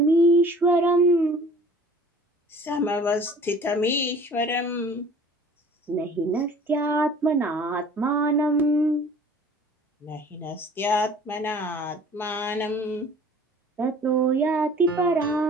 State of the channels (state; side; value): normal; both; correlation 0.49